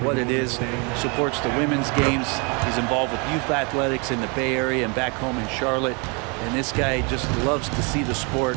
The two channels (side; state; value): left; quieter; 32.3 dB